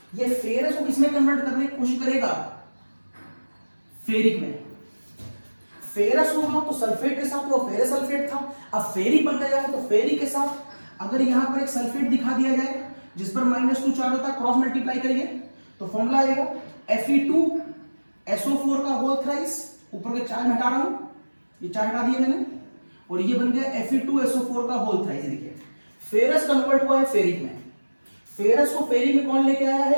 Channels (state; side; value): inverted; both; correlation -1.00